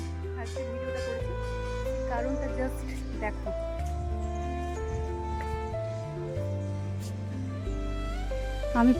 আজকে ভিডিওটা করেছি, কারণটা জাস্ট দেখো। আমি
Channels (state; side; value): identical; both; correlation 1.00